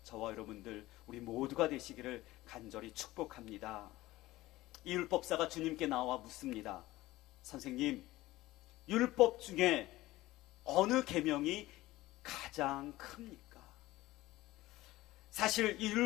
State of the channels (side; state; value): right; quieter; 17.7 dB